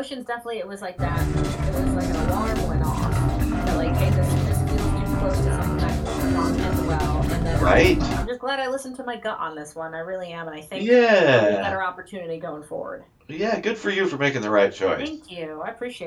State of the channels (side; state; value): both; identical; correlation 1.00